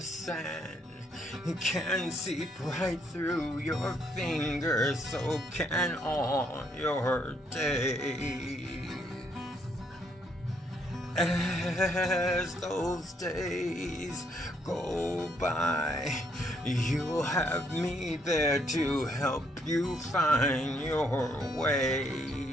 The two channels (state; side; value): normal; both; correlation 0.71